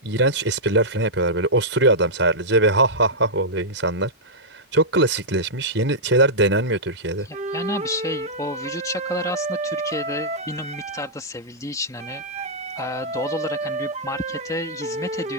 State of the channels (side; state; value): both; normal; correlation -0.11